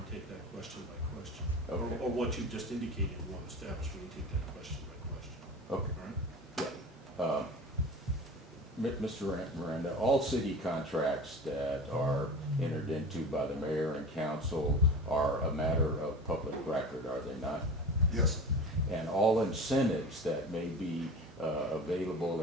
take that question by question. Okay. Or what you've just indicated you want to establish, we can take that question by question. okay. All right? Mr. Miranda, all city contracts that are entered into by the mayor and council are a matter of public record, are they not? Yes, And all incentives that may be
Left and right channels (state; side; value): normal; both; correlation 0.34